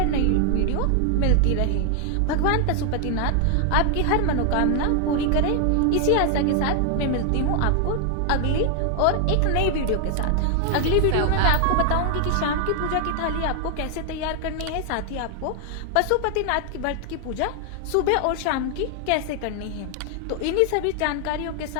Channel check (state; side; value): different; both; correlation 0.00